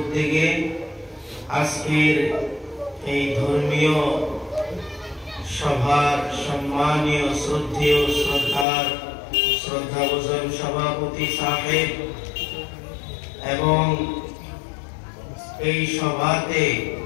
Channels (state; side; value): drops out; right; at 8.7 s